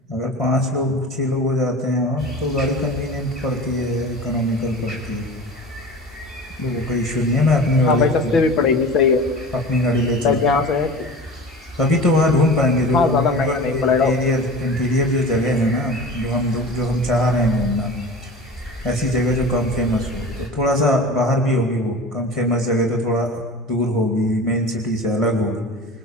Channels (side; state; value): both; normal; correlation 0.35